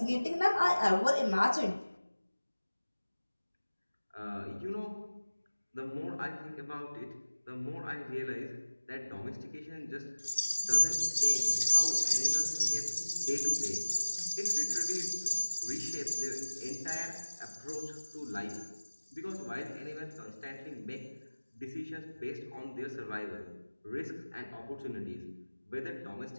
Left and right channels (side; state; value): both; inverted; correlation -1.00